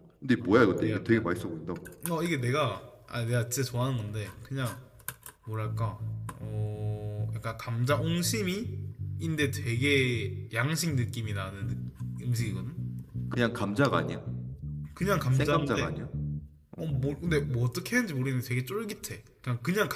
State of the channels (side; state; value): both; identical; correlation 1.00